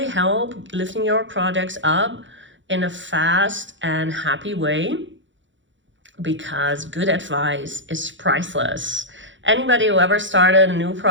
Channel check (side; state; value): left; late; 0.55 ms